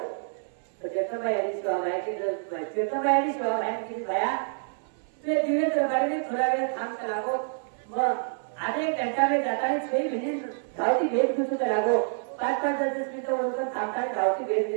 तो जगदंबाई यांनी सेवा माहिती जगदंबाई यांनी सेवा माहिती केली भया ते दिवे दरबारी थोडा वेळ थांब करावो मग आधे एक घंटा में जाताना 6 मिनिट धावती भेट घेतो करावो 5-5 मिनिटं ओळखून थांबताना धावती भेट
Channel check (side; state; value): left; silent; 60 dB below the other